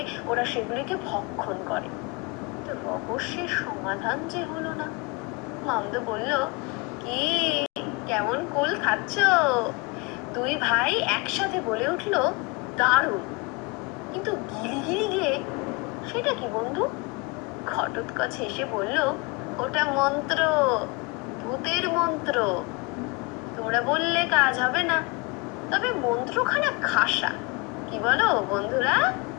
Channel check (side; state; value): right; quieter; 26.6 dB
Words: ওরা সেগুলিকে ভক্ষণ করে। তো রহস্যের সমাধান যে হলো না। মামদো বলল, কি, কেমন কুল খাচ্ছ? দুই ভাই একসাথে বলে উঠল, দারুণ। কিন্তু গিলি গিলি গে, সেটা কি বন্ধু? ঘটোৎকচ হেসে বলল, ওটা মন্ত্র, ভূতের মন্ত্র। তোমরা বললে কাজ হবে না, তবে মন্ত্রখানা খাসা, কি বলো বন্ধুরা?